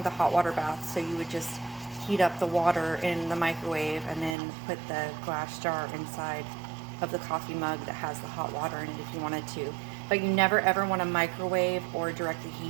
a hot water bath. So you would just heat up the water in the microwave and then put the glass jar inside of the coffee mug that has the hot water in it if you wanted to. But you never ever want to microwave or directly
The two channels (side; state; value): left; drops out; at 4.4 s